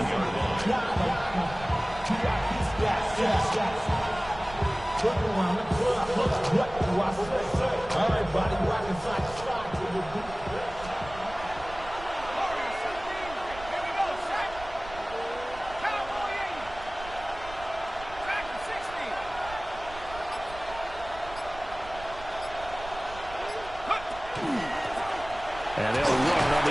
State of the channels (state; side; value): noise; right; rumble, 15 dB below the sound